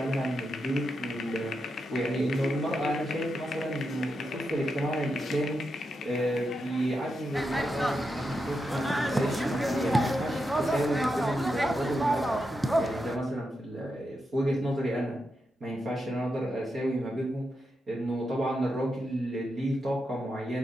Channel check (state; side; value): normal; both; correlation 0.86